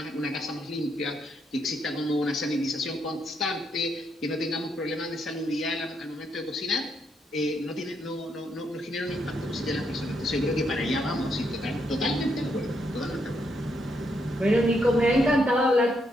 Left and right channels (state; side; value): normal; both; correlation 0.77